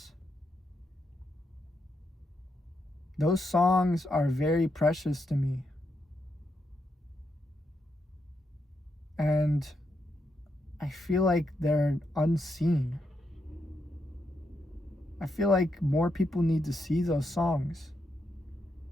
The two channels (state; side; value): normal; both; correlation 0.82